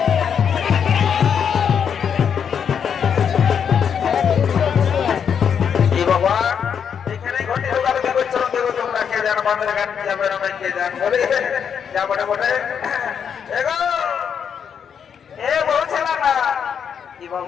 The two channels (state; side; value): quieter; right; 7.5 dB